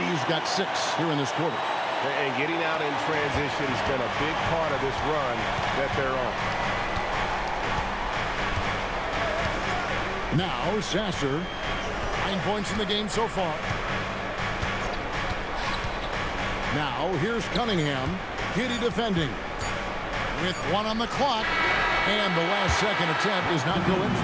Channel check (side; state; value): both; identical; correlation 1.00